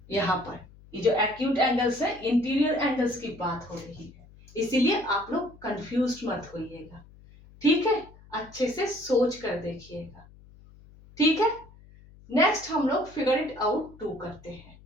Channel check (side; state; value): left; noise; hum, 23 dB below the sound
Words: यहाँ पर ये जो एक्यूट एंगल्स है इंटीरियर एंगल्स की बात हो रही है, इसीलिए आप लोग कंफ्यूज्ड मत होइएगा। ठीक है, अच्छे से सोच कर देखिएगा। ठीक है, नेक्स्ट हम लोग फिगर इट आउट 2 करते हैं।